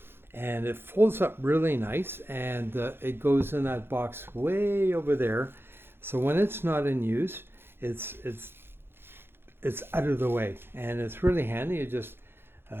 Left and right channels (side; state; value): left; late; 0.11 ms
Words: and it folds up really nice, and it goes in that box way over there. So when it's not in use, it's out of the way, and it's really handy. You just